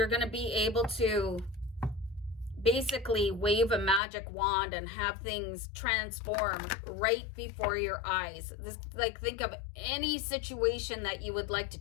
going to be able to basically wave a magic wand and have things transform right before your eyes. This, like, think of any situation that you would like to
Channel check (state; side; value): drops out; right; at 4.0 s